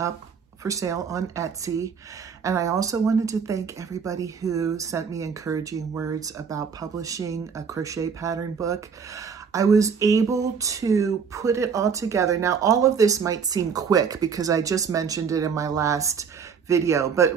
for sale on Etsy. And I also wanted to thank everybody who sent me encouraging words about publishing a crochet pattern book. I was able to put it all together. Now, all of this might seem quick because I just mentioned it in my last video, but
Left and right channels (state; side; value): quieter; left; 6.3 dB